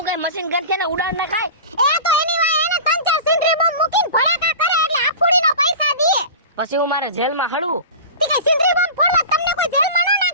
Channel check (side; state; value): both; inverted; correlation -0.33